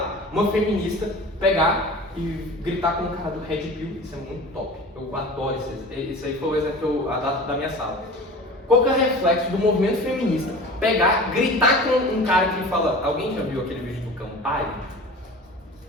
uma feminista pegar e gritar com o cara do Red Pill? Isso é muito top. Eu adoro isso. Esse aí foi o exemplo da minha sala. qual que é o reflexo do movimento feminista pegar, gritar com um cara que fala... Alguém já viu aquele vídeo do Campari?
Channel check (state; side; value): normal; both; correlation 0.38